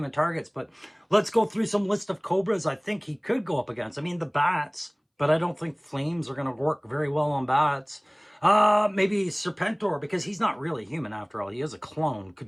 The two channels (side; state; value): both; identical; correlation 1.00